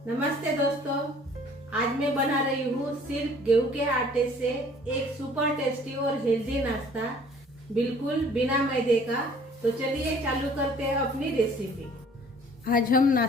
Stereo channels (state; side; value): normal; both; correlation 0.54